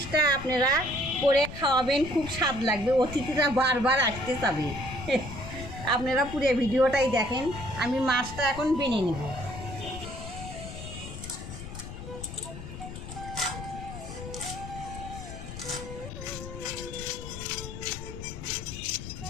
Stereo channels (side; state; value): left; noise; rumble, 10 dB below the sound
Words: আপনারা করে খাওয়াবেন, খুব স্বাদ লাগবে, অতিথিরা বারবার আসতে চাবে। আপনারা পুরো ভিডিওটাই দেখেন। আমি মাছটা এখন বেনে নেব।